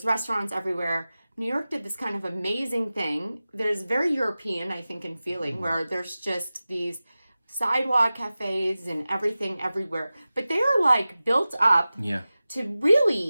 restaurants everywhere. New York did this kind of amazing thing. There's very European, I think, in feeling, where there's just these sidewalk cafes and everything everywhere. But they are like built up to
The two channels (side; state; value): both; inverted; correlation -0.96